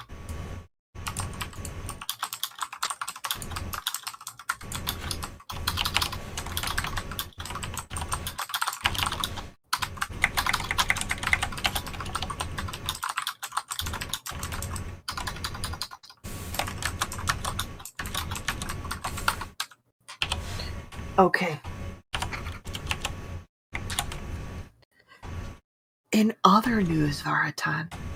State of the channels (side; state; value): both; identical; correlation 1.00